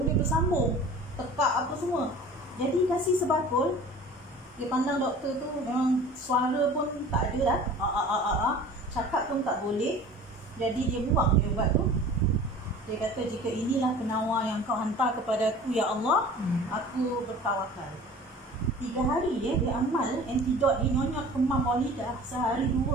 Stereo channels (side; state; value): both; normal; correlation 0.43